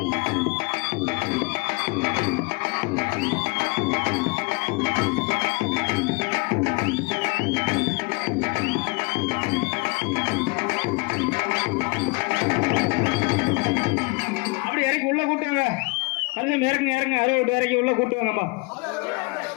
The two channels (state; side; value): quieter; right; 27.7 dB